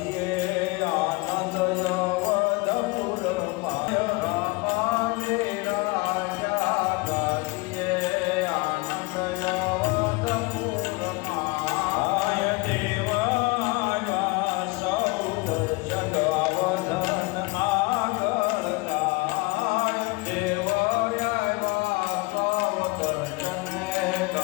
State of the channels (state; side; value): quieter; right; 25.3 dB